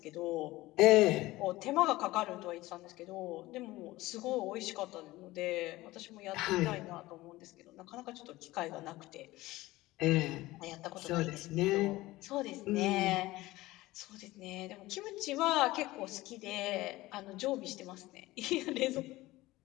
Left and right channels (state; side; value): quieter; right; 18.5 dB